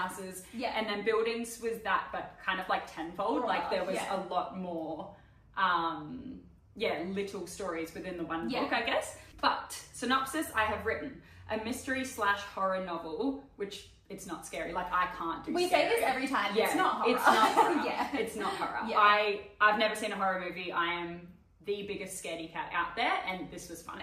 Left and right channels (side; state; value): both; identical; correlation 1.00